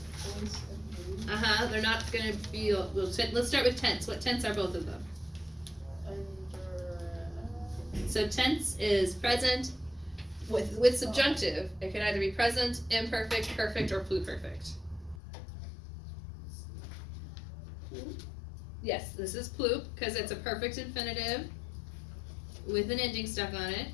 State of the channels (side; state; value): right; drops out; at 15.2 s